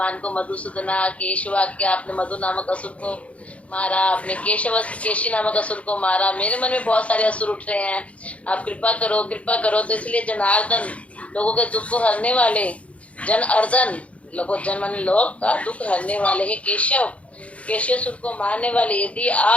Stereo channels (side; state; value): right; late; 0.064 ms